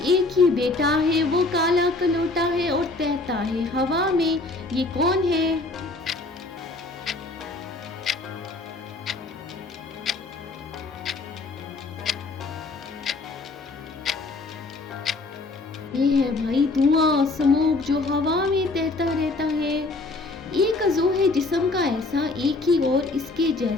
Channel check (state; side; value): quieter; right; 3.3 dB